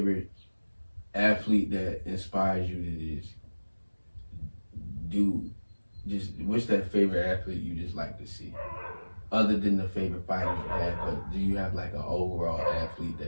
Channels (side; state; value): both; inverted; correlation -1.00